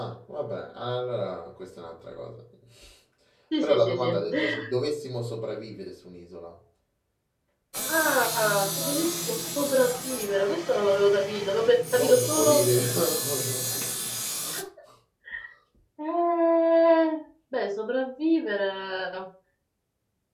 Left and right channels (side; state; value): both; identical; correlation 1.00